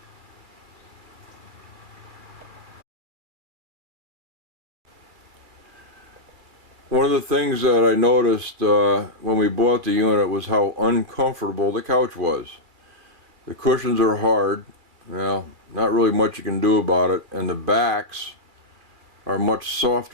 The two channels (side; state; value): left; late; 2.4 ms